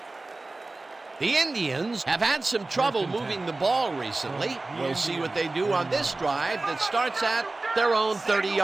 The Indians have had some trouble moving the ball recently. We'll see what they do on this drive that starts at their own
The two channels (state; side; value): quieter; left; 3.2 dB